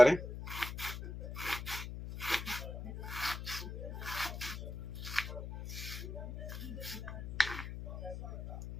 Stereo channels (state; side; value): noise; left; hum, 7 dB below the sound